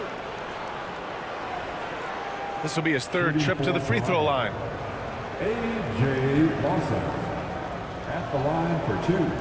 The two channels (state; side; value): identical; both; correlation 1.00